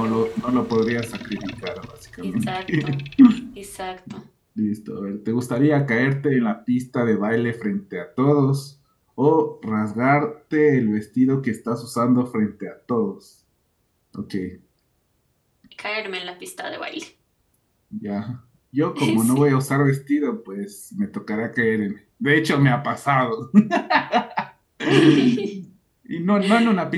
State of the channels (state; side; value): identical; both; correlation 1.00